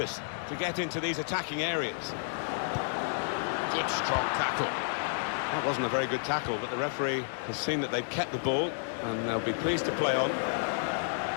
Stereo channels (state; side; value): silent; right; 56 dB below the other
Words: to get into these attacking areas. Good, strong tackle. That wasn't a very good tackle, but the referee has seen that they've kept the ball, and they'll be pleased to play on.